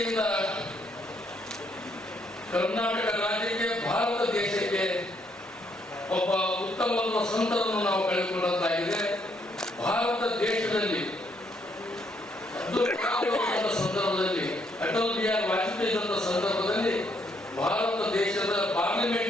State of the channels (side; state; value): both; normal; correlation 0.72